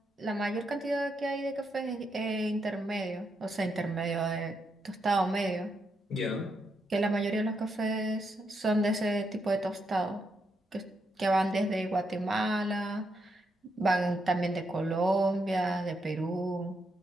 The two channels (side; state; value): both; normal; correlation 0.80